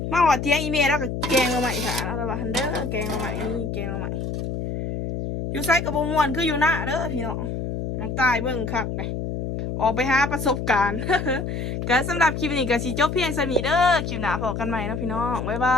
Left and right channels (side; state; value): left; noise; hum, 4 dB below the sound